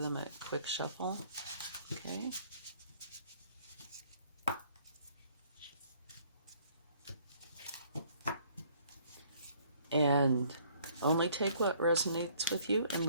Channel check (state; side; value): inverted; both; correlation -0.60